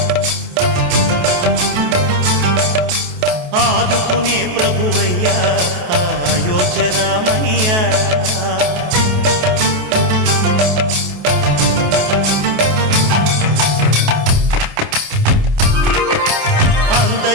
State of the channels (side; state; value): left; late; 28 ms